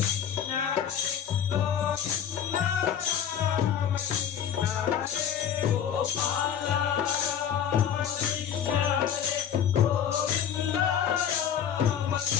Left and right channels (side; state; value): right; quieter; 8.8 dB